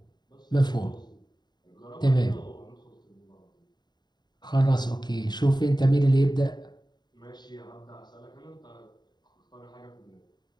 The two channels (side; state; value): right; late; 0.21 ms